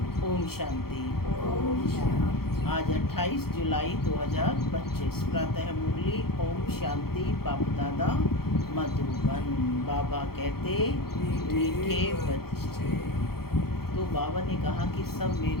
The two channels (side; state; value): right; late; 0.95 ms